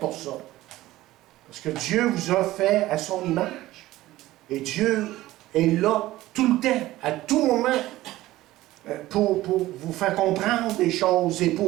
ça. Parce que Dieu vous a fait à son image. Et Dieu est là tout le temps, à tout moment, pour vous faire comprendre des choses et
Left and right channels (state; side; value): quieter; left; 16.4 dB